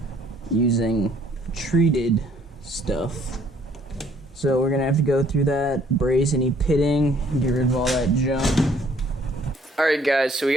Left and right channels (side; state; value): both; normal; correlation 0.61